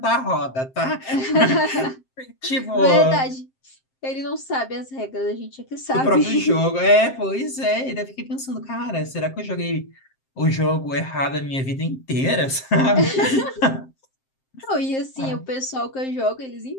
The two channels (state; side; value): late; right; 7.6 ms